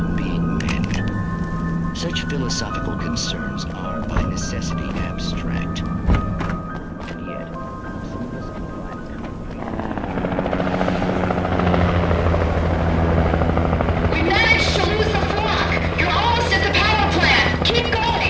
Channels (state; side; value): identical; both; correlation 1.00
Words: being men. Such philosophical concerns are, by necessity, abstract. And yet, some of us We managed to lose the flock. You're almost at the power plant. Keep